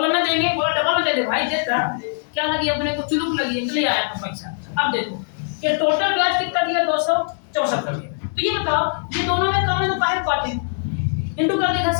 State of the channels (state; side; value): silent; right; digital silence